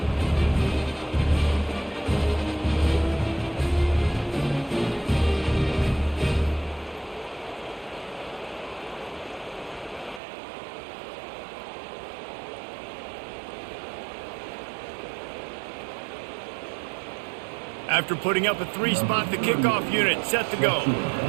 After putting up a 3-spot, the kickoff unit set to go.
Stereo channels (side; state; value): left; drops out; at 10.2 s